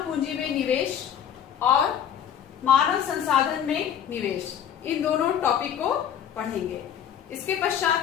पूंजी में निवेश और मानव संसाधन में निवेश, इन दोनों टॉपिक को पढ़ेंगे। इसके पश्चात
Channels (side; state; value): right; quieter; 9.2 dB